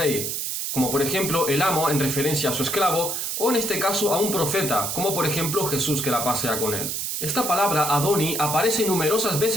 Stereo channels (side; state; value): right; noise; hiss, 2 dB below the sound